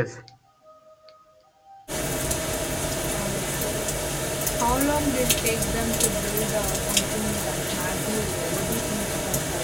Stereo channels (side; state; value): both; identical; correlation 1.00